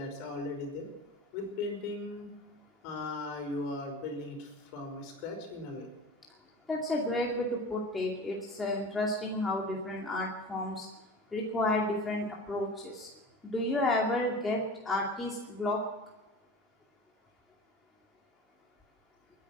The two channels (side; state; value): both; normal; correlation 0.35